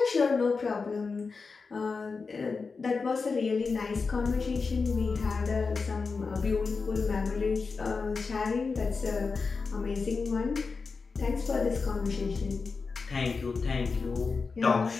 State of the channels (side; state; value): right; quieter; 4.6 dB